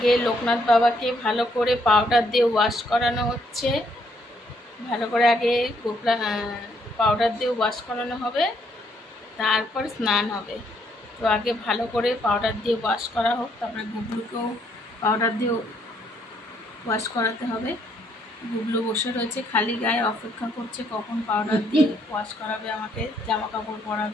লোকনাথ বাবাকে ভালো করে পাউডার দিয়ে ওয়াশ করানো হচ্ছে। ভালো করে আগে পাউডার দিয়ে ওয়াশ করানো হবে, তারপর স্নান হবে। তো আগে ভালো করে পাউডার দিয়ে ওয়াশ করা হোক, তারপরে গুবলুকেও পাউডার দিয়ে ওয়াশ করাতে হবে। গুবলু বসে রয়েছে খালি গায়ে, অপেক্ষা করছে কখন পাউডার দিয়ে ওয়াশ করাবে, আমাকে জামা কাপড়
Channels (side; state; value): both; normal; correlation 0.70